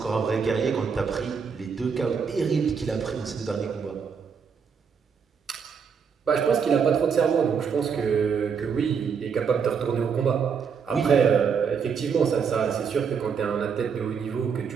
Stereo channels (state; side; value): quieter; left; 6.4 dB